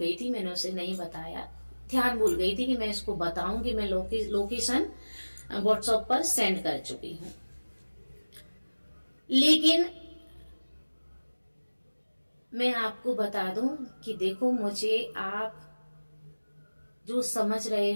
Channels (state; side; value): inverted; both; correlation -1.00